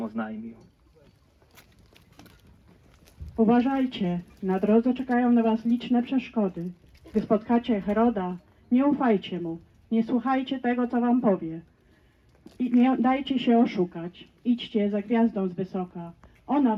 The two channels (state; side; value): identical; both; correlation 1.00